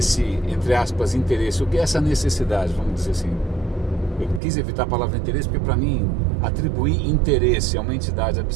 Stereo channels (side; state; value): left; drops out; at 4.4 s